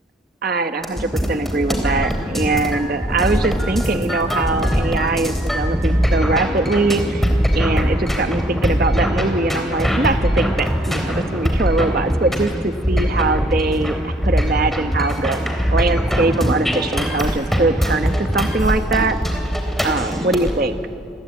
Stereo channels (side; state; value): both; normal; correlation 0.62